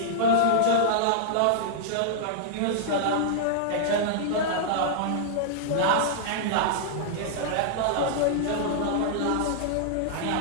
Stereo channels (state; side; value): different; both; correlation -0.02